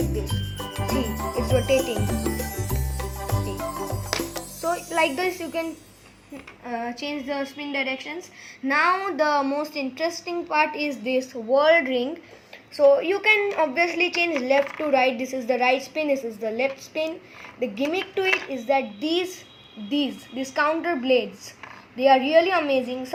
this. See, it's rotating. See. So like this you can change the spin directions. Now the most interesting part is this World ring. So you can obviously change left to right. This is the right spin, this is the left spin. The gimmick to it is that these counter blades, they are really amazing.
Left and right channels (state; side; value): identical; both; correlation 1.00